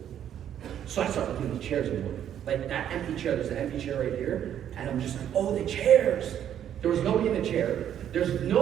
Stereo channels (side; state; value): left; quieter; 10.1 dB